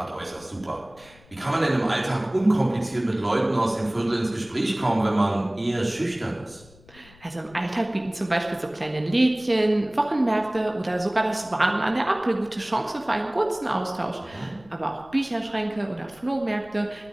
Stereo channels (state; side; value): noise; left; rumble, 25 dB below the sound